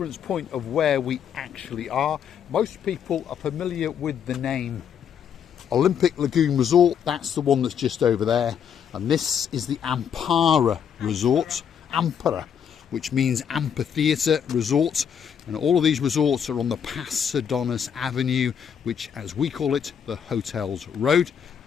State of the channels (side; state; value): right; quieter; 8.0 dB